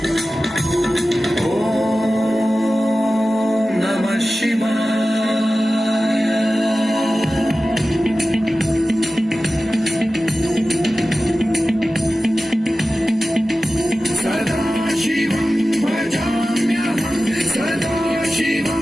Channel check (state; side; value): normal; both; correlation 0.95